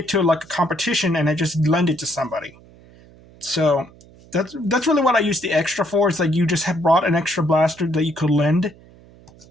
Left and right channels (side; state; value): right; noise; hum, 25 dB below the sound